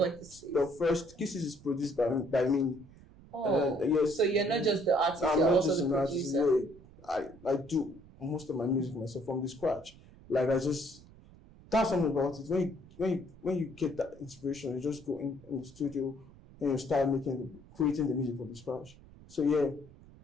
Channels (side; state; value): right; noise; rumble, 22 dB below the sound